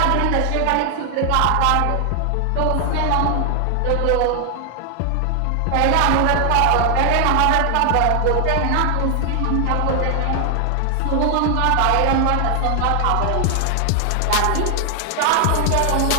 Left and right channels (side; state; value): both; different; correlation 0.00